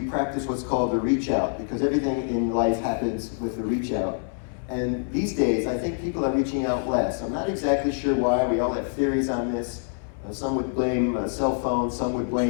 practice what's called the reach out, because everything in life happens with the reach out. And these days, I think people are reaching out less. I'm not exactly sure why. We all have theories on this. Some would blame cell phones, some would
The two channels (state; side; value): silent; right; 60 dB below the other